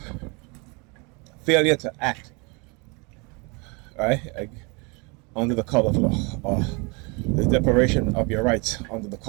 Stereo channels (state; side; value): quieter; left; 30.1 dB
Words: failure to act, right, under the color of law, or the deprivation of your rights under the